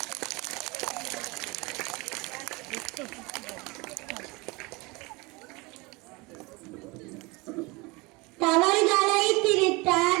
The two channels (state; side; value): quieter; left; 25.3 dB